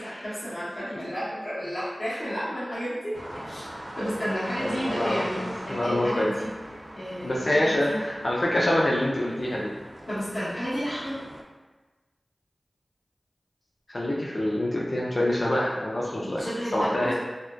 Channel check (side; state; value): both; normal; correlation 0.97